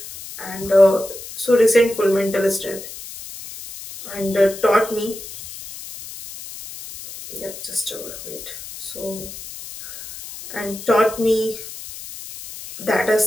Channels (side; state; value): left; noise; hiss, 13 dB below the sound